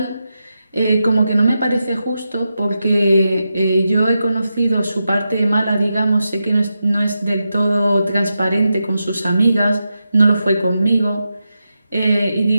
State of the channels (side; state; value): both; inverted; correlation -0.88